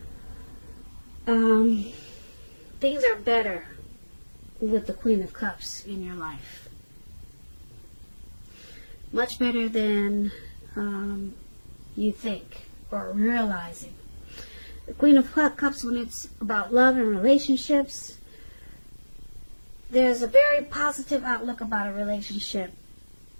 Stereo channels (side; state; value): both; inverted; correlation -1.00